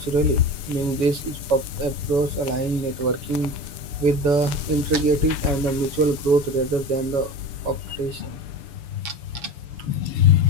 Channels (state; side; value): late; left; 6.9 ms